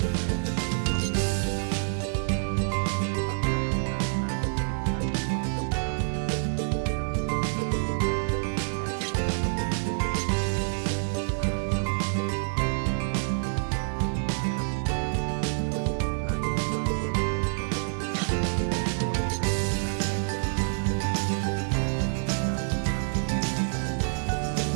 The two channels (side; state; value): left; silent; digital silence